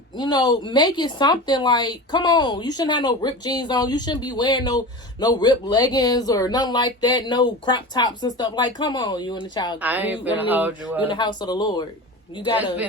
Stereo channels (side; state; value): both; normal; correlation 0.31